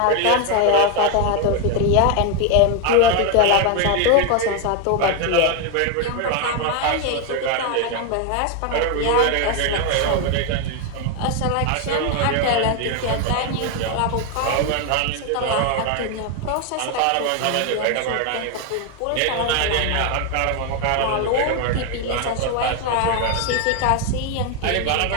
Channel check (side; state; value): both; different; correlation 0.01